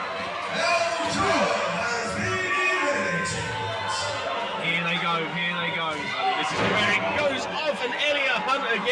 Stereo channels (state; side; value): identical; both; correlation 1.00